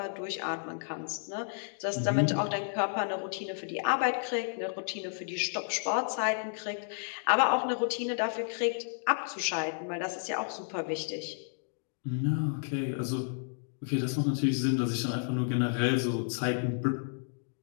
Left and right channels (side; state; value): right; silent; digital silence